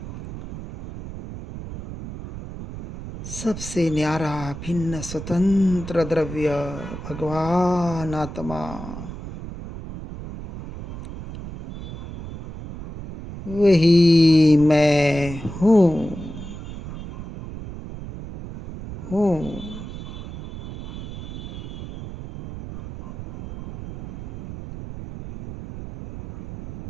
सबसे न्यारा भिन्न स्वतंत्र द्रव्य भगवान आत्मा, वही मैं हूँ।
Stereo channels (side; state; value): right; noise; rumble, 11 dB below the sound